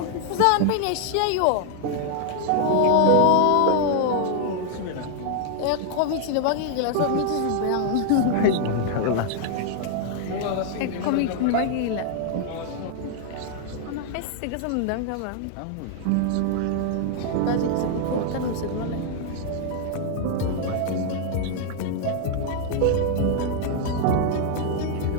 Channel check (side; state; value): both; different; correlation 0.00